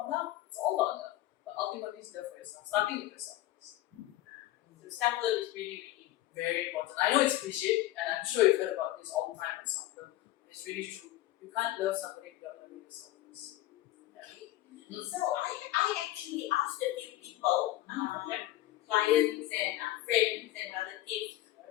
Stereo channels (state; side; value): quieter; right; 15.5 dB